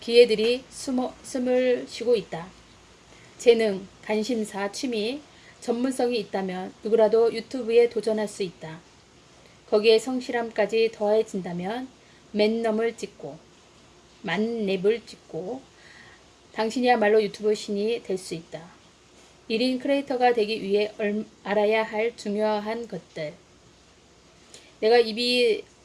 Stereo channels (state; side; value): identical; both; correlation 1.00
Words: 기회들이 숨을 쉬고 있다. 재능, 관심사, 취미, 전문성이 있다면 누구라도 유튜브에 도전할 수 있다. 거기에 성실함까지 더해진다면 만렙을 찍고 당신이야말로 유튜브 신이 될 수 있다. 1인 크리에이터가 되기 위해 알아야 할 중요한 것들. 내가 입이